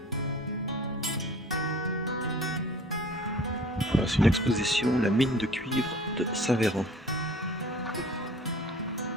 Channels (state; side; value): normal; both; correlation 0.47